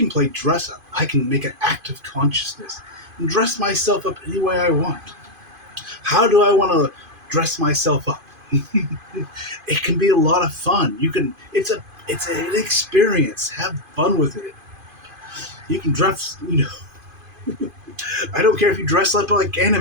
play dress up. I can make an active consciousness and dress myself up any way I want. How do I want to dress myself up? It can be a lot of fun. It's an experience. Have fun with it. You can dress, I don't care if you dress up like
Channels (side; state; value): left; late; 2.5 ms